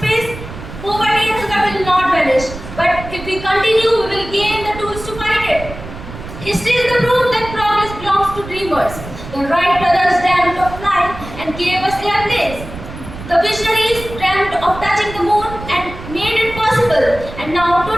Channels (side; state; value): right; noise; rumble, 12 dB below the sound